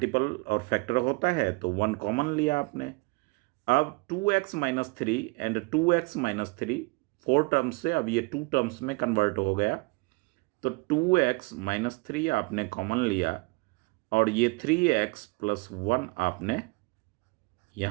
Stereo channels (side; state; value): left; quieter; 27.0 dB